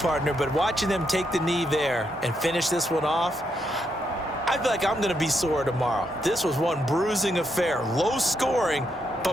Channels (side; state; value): both; normal; correlation 0.79